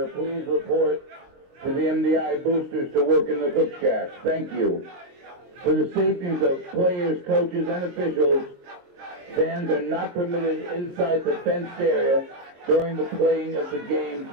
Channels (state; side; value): late; left; 23 ms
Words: please report to the MDI boosters to work in the cook shack. Thank you. For the safeties of players, coaches, and officials, fans are not permitted inside the fenced area during the playing of the game